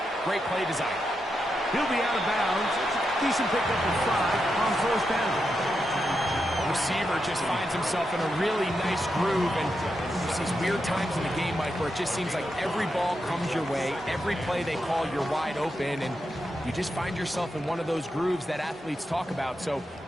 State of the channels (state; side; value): normal; both; correlation 0.86